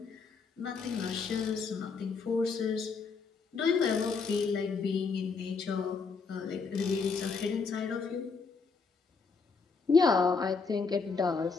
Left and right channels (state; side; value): quieter; right; 4.9 dB